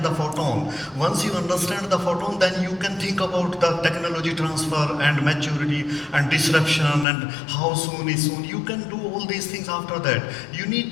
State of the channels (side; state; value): right; drops out; at 7.1 s